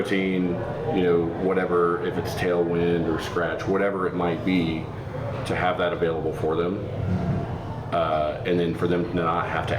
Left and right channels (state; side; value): identical; both; correlation 1.00